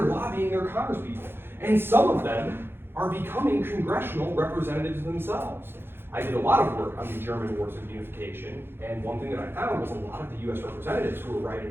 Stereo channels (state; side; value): late; left; 0.11 ms